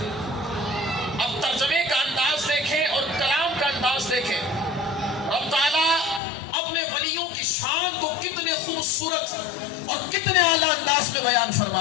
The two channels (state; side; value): drops out; right; at 6.2 s